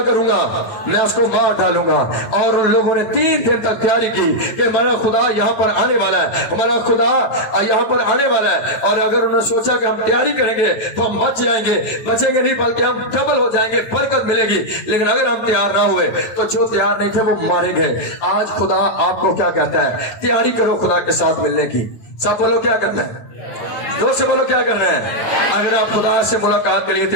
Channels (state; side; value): late; right; 8.9 ms